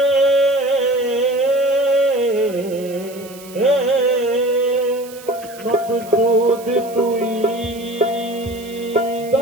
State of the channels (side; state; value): right; noise; hiss, 19 dB below the sound